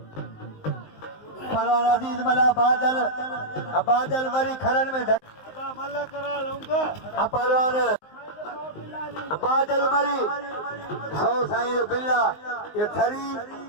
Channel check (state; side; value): late; right; 19 ms